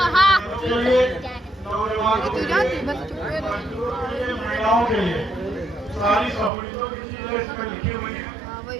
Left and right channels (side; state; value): left; drops out; at 6.5 s